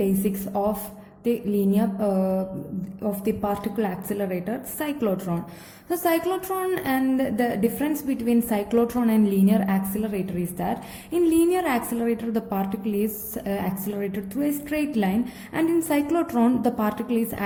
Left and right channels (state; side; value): identical; both; correlation 1.00